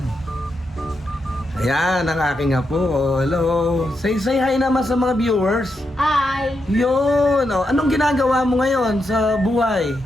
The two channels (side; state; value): both; normal; correlation 0.84